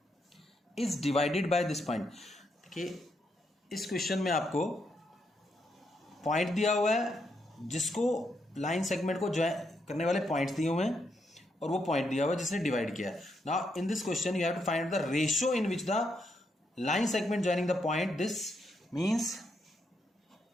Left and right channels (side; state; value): both; normal; correlation 0.79